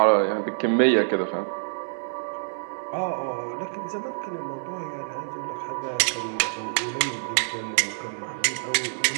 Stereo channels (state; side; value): silent; left; digital silence